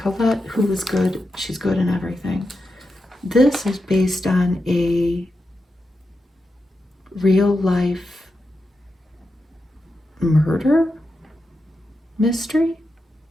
who is good. She's good in everything. This is based on a real-life murder mystery.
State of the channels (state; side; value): normal; both; correlation 0.88